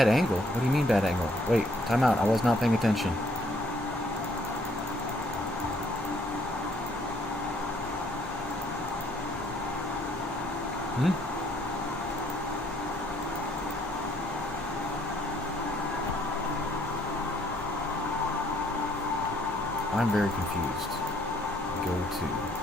angle? What do you mean bad angle? Wait, time out. I was not paying attention. I'm very confused. Go to,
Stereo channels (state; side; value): normal; both; correlation 0.65